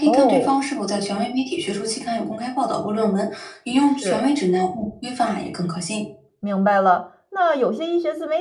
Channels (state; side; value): identical; both; correlation 1.00